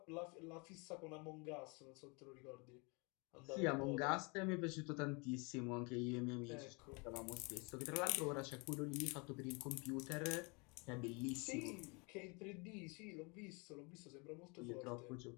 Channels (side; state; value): right; quieter; 30.5 dB